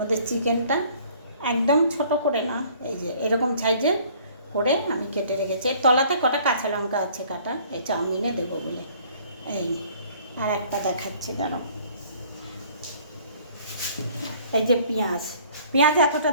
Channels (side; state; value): both; inverted; correlation -0.56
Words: চিকেনটা একদম ছোট করে না, এই যে এরকম সাইজের করে আমি কেটে রেখেছি। এর তলাতে কটা কাঁচা লঙ্কা আছে কাটা, এই চাউমিনে দেবো বলে। এই আর একটা দেখাচ্ছি, দাঁড়াও। এই যে পেঁয়াজ এতটা